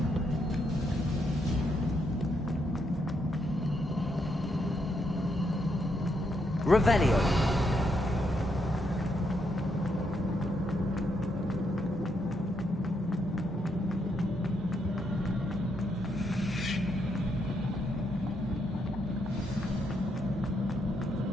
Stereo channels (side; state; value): both; normal; correlation 0.78